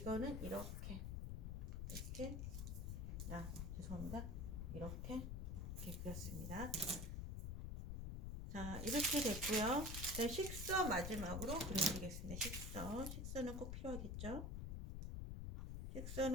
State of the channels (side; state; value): left; noise; rumble, 3 dB below the sound